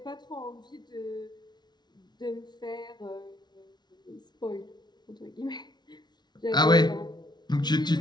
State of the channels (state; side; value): late; right; 0.20 ms